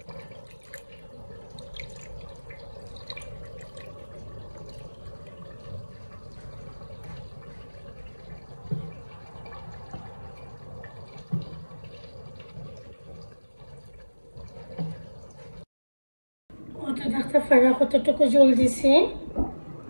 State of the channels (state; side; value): inverted; both; correlation -1.00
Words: ওটা দেখতে পারা কতটুকু জল দিছি।